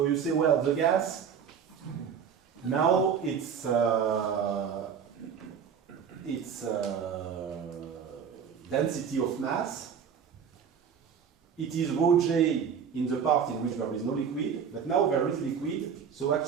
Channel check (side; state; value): left; quieter; 7.3 dB